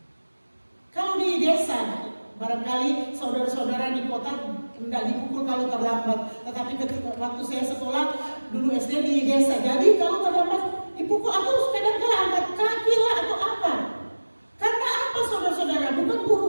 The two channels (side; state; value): both; inverted; correlation -1.00